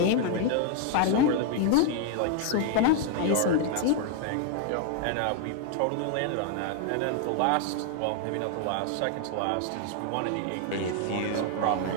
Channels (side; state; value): both; different; correlation 0.00